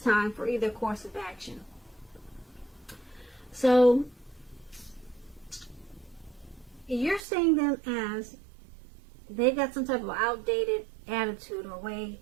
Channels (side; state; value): left; drops out; at 7.2 s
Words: time for either course of action. So you're seeing them as they've got some type of outdated attitude or way